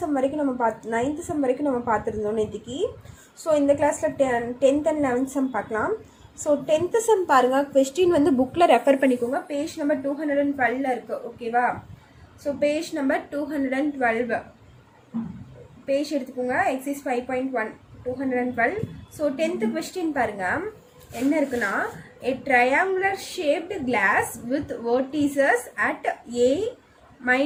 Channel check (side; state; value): both; identical; correlation 1.00